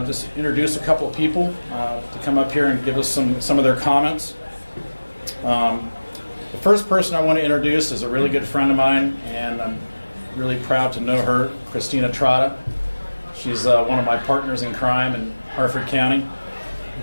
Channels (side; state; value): both; inverted; correlation -1.00